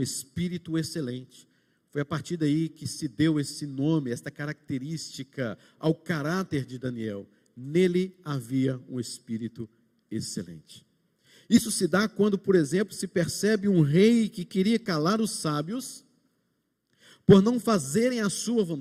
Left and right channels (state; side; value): identical; both; correlation 1.00